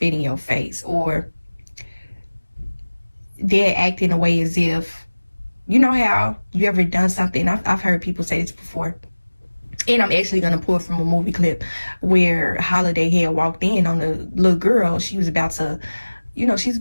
in your face, or they're acting a way as if, you know how you ever done something, I've heard people say this before, and I'm actually going to pull from a movie clip where Holiday had walked in on the little girl. She was about to, she's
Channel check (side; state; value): both; inverted; correlation -1.00